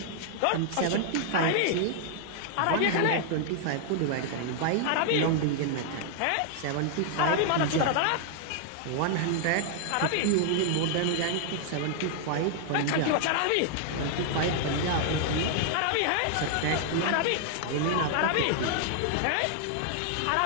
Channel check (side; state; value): both; different; correlation -0.01